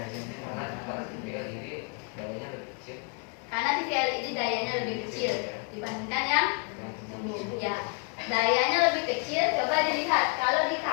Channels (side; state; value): right; quieter; 37.6 dB